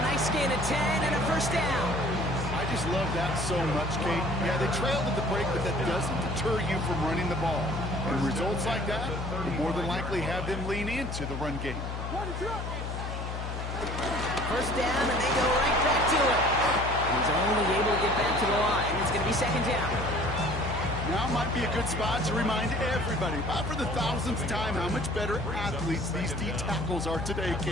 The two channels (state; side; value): noise; left; hum, 5 dB below the sound